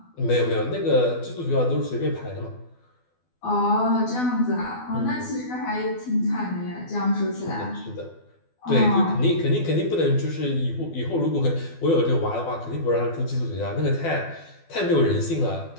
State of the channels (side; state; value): right; late; 12 ms